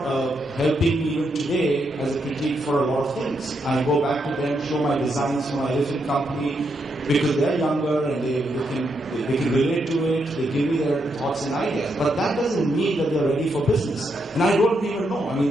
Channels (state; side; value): normal; both; correlation 0.80